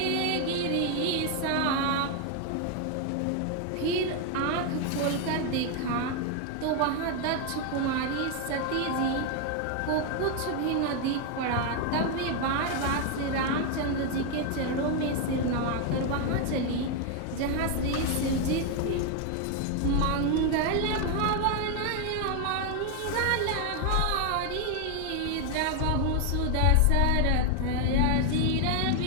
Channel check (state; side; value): different; both; correlation 0.01